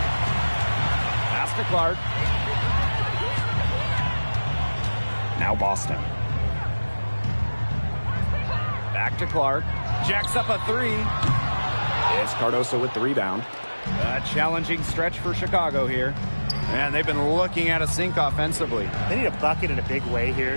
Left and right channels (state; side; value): inverted; both; correlation -1.00